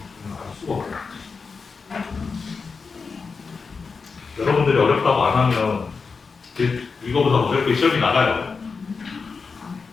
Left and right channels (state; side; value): quieter; right; 4.9 dB